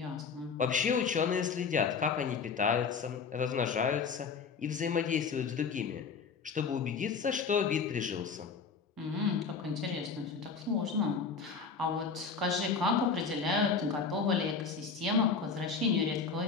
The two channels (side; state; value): right; quieter; 5.4 dB